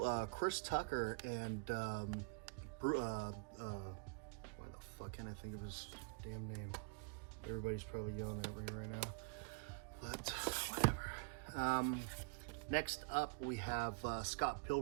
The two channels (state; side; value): quieter; left; 33.0 dB